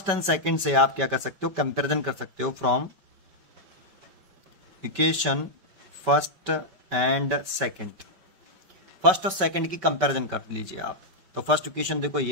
एंड सेकंड से आप क्या कर सकते हो, कंपैरिजन कर सकते हो, from equation first and second, first और सेकंड की कंपैरिजन कर लीजिए आप। तो फर्स्ट इक्वेशन देखो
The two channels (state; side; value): late; left; 5.2 ms